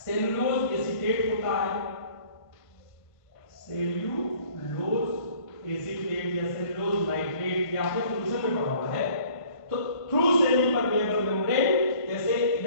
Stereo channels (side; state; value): right; late; 1.5 ms